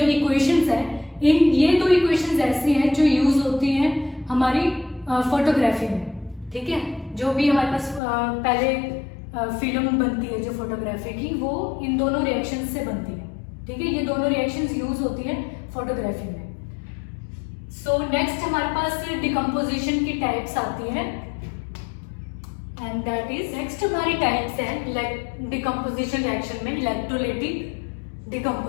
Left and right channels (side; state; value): right; drops out; at 8.0 s